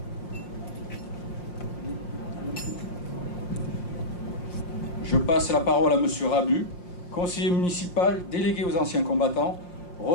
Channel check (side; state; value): right; late; 5.6 ms